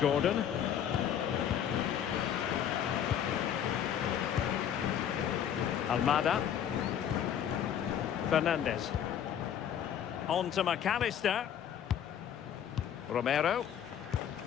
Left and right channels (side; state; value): right; quieter; 9.4 dB